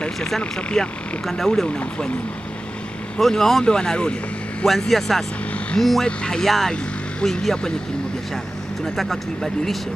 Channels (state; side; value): normal; both; correlation 0.96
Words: sana kwa sababu pia ukanda ule una mvua nyingi. Kwa hiyo niwaombe wana Rorya, kuanzia sasa muwe tayari kuingia kwenye kilimo biashara. Tunataka tuibadilishe